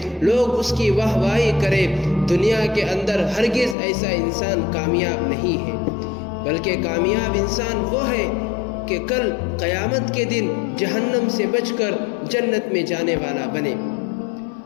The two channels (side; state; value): right; drops out; at 3.8 s